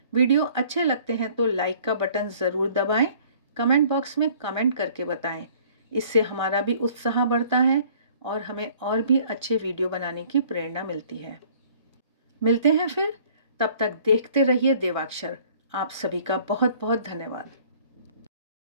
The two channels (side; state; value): both; inverted; correlation -0.55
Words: वीडियो अच्छे लगते हैं तो लाइक का बटन ज़रूर दबाएं, कमेंट बॉक्स में कमेंट करके बताएं। इससे हमारा भी उत्साह बढ़ता है और हमें और भी अच्छे वीडियो बनाने की प्रेरणा मिलती है। मिलते हैं फिर, तब तक देखते रहिए देवाक्षर। आप सभी का बहुत बहुत धन्यवाद।